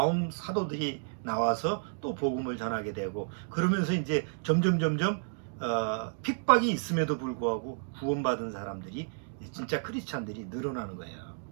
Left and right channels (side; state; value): left; silent; digital silence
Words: 사도들이 나와서 또 복음을 전하게 되고, 그러면서 이제 점점 핍박이 있음에도 불구하고 구원받은 사람들이, 진짜 크리스찬들이 늘어나는 거예요.